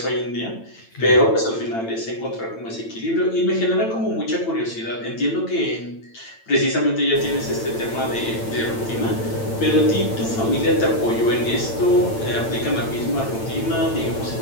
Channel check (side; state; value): right; late; 8.9 ms